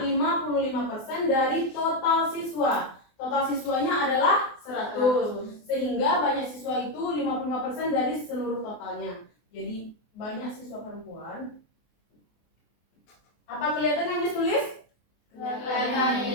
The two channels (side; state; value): right; late; 24 ms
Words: 55% dari total siswa. Total siswanya adalah 100. Sehingga banyak siswa itu 55% dari seluruh totalnya. Jadi, banyak siswa perempuan. Apa kelihatan yang ditulis? Kelihatan.